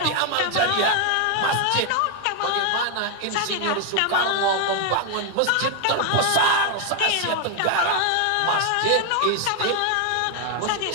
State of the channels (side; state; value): both; different; correlation 0.01